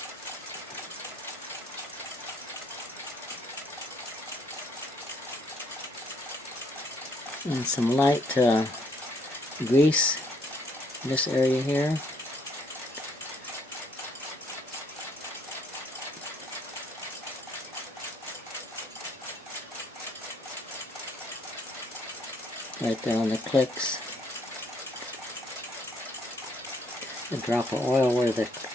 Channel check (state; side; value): normal; both; correlation 0.67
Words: And some light grease in this area here. Right there on the clicks. A drop of oil where the